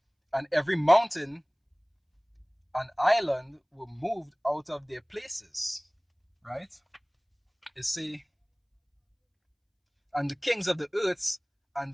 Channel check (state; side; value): identical; both; correlation 1.00